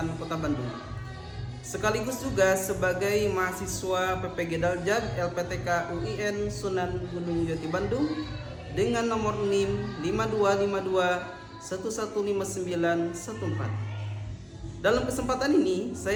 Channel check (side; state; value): both; identical; correlation 1.00